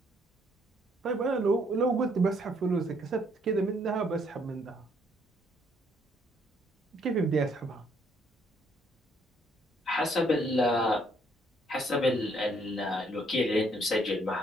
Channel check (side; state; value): both; normal; correlation 0.68